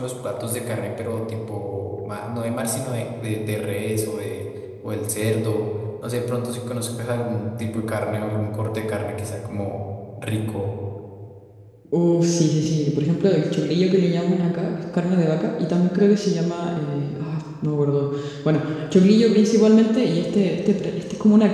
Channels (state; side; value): identical; both; correlation 1.00